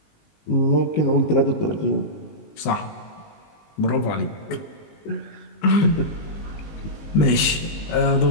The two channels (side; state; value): right; late; 19 ms